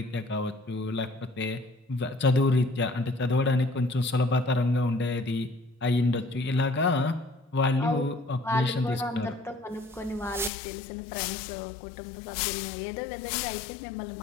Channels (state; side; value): drops out; right; at 10.5 s